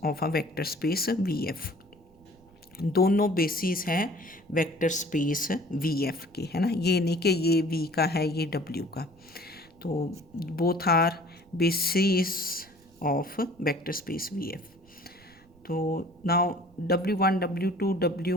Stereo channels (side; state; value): right; noise; rumble, 28 dB below the sound